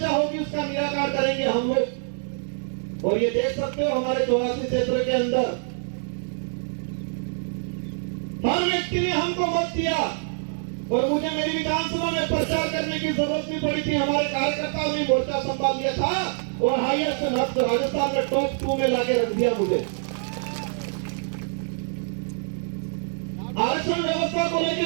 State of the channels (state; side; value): silent; left; digital silence